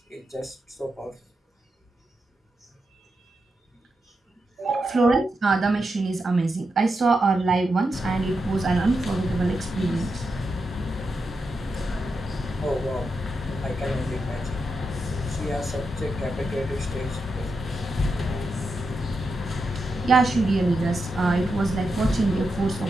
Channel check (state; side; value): normal; both; correlation 0.86